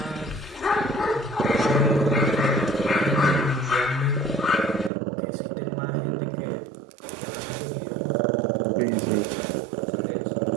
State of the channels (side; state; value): left; drops out; at 4.9 s